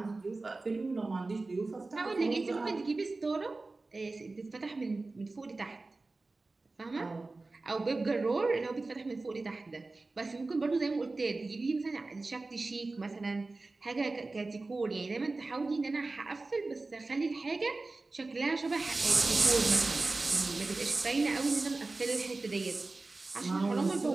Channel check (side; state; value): left; quieter; 3.4 dB